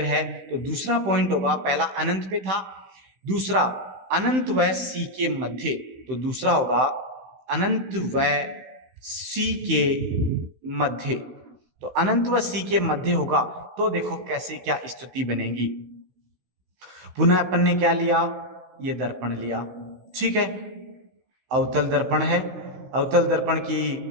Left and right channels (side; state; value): left; late; 16 ms